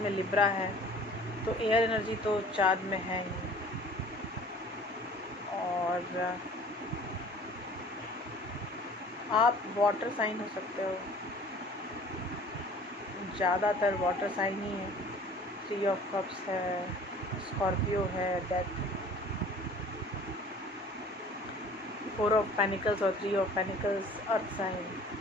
लिब्रा है, तो एयर एनर्जी तो चाँद में है ही। और आप वाटर साइन हो सकते हो, ज़्यादातर वाटर साइन ही है। 3 ऑफ कप्स है, स्कॉर्पियो है, डेथ, 4 ऑफ पेनिकल्स और 3 ऑफ पेनिकल्स अर्थ साइन,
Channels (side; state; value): both; normal; correlation 0.48